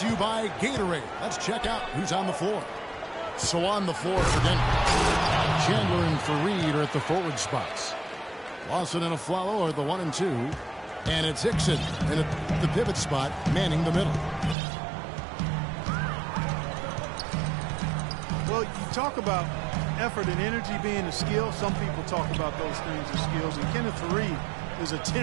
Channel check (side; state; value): left; drops out; at 14.6 s